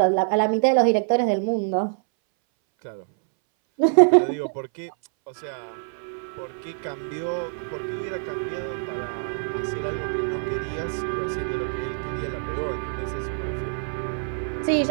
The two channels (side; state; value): left; silent; 61 dB below the other